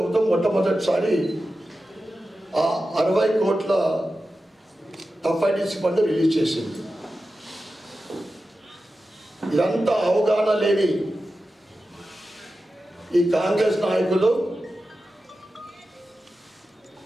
మొట్టమొదటిసారి ఆ 60 కోట్ల TUFIDC ఫండ్ రిలీజ్ చేసింది. ఇదంతా అవగాహన లేని ఈ కాంగ్రెస్ నాయకులు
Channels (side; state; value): both; normal; correlation 0.93